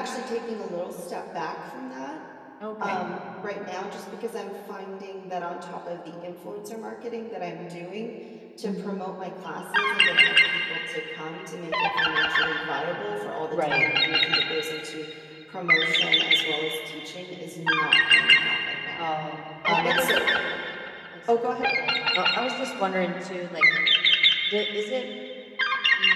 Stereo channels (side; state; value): both; identical; correlation 1.00